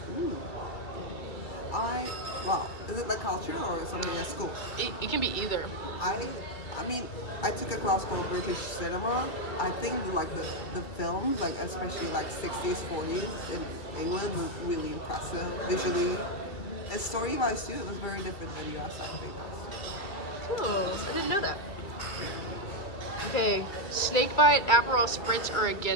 Well, is it like culture or something at school? It can be either. I mean, I took a class called British cinema. I think like the films, like especially like 60s, 40s in England was really impressive visually. And story-wise too, it was very different than US, I think. Cool. I didn't know that. Okay, snakebite, Aperol Spritz, or a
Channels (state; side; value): late; right; 2.5 ms